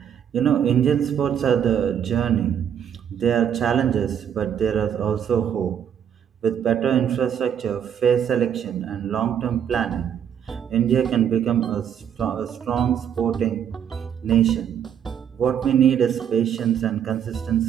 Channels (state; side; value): quieter; left; 8.8 dB